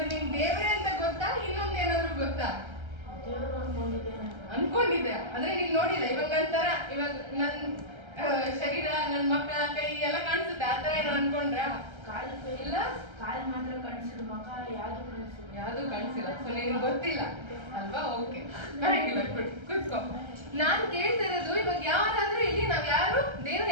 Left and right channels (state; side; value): late; left; 1.3 ms